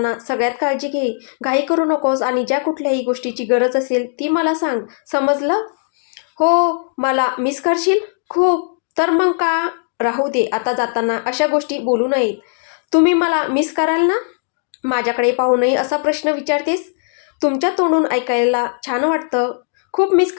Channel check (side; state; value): right; silent; digital silence